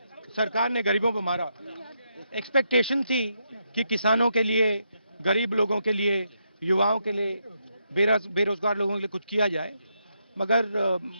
सरकार ने गरीबों पर मारा, expectation थी कि किसानों के लिए, गरीब लोगों के लिए, युवाओं के लिए, बेरोजगार लोगों के लिए कुछ किया जाए, मगर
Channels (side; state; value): both; inverted; correlation -0.80